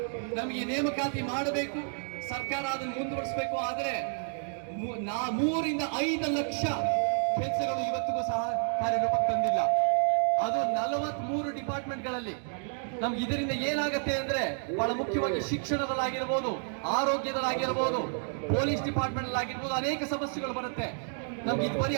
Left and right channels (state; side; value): silent; left; 58 dB below the other